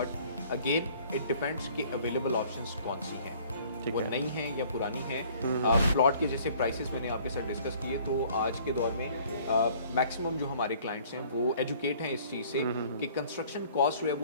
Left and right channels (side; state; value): both; inverted; correlation -0.55